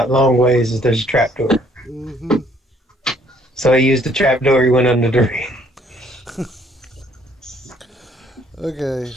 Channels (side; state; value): both; normal; correlation 0.63